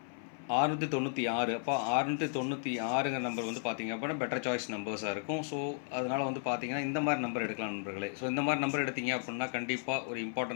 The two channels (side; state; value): right; silent; 55 dB below the other